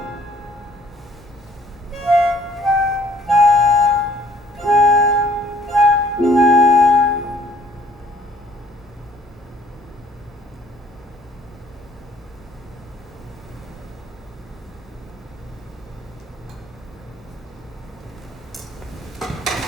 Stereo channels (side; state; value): both; normal; correlation 0.59